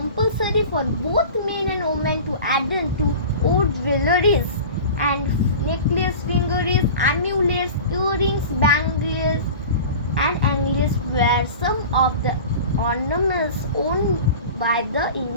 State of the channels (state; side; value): inverted; both; correlation -0.36